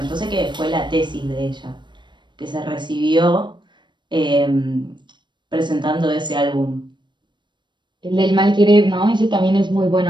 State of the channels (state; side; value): late; left; 0.22 ms